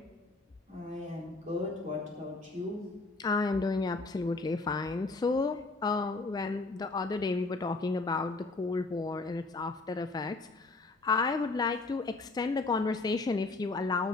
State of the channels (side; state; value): right; quieter; 3.5 dB